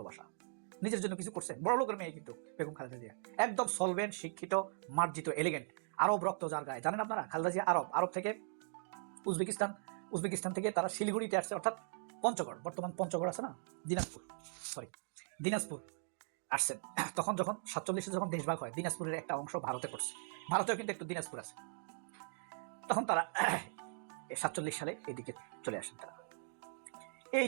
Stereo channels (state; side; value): silent; left; digital silence